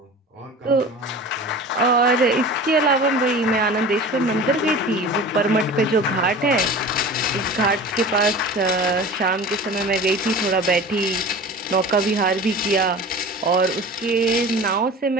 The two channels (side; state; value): both; normal; correlation 0.37